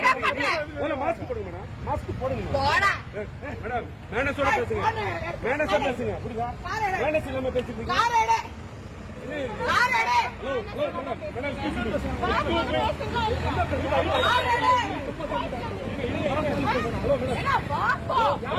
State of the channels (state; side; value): identical; both; correlation 1.00